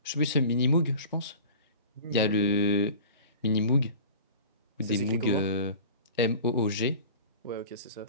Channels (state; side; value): inverted; both; correlation -0.40